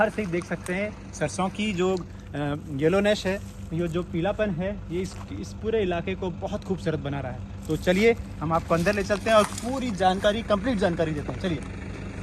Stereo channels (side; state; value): both; identical; correlation 1.00